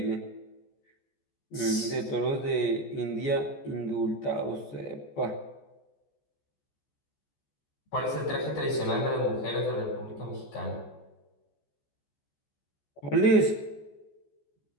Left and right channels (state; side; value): late; right; 14 ms